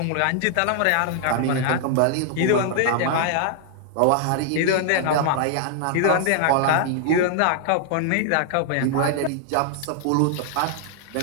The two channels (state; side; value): different; both; correlation 0.00